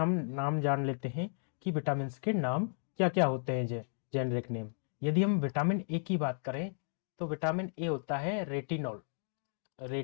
नाम जान लेते हैं कि विटामिन के नाम क्या क्या होते हैं, जेनरिक नेम। यदि हम विटामिन ए की बात करें तो विटामिन ए होता है रेटिनॉल,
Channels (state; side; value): silent; right; digital silence